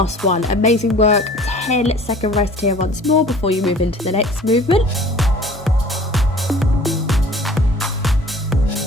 one. Amazing work. 10-second rest here once more before you move into the next movement.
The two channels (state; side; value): normal; both; correlation 0.48